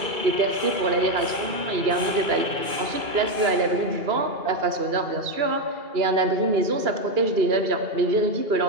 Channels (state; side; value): late; left; 2.3 ms